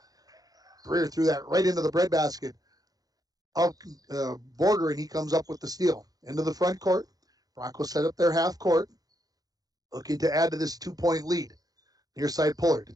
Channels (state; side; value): late; left; 0.18 ms